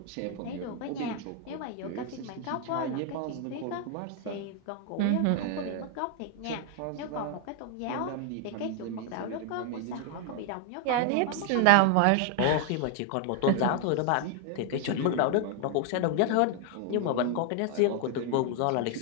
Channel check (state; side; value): different; both; correlation 0.00